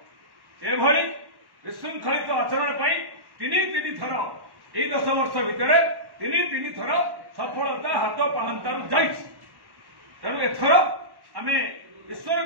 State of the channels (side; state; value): left; late; 1.1 ms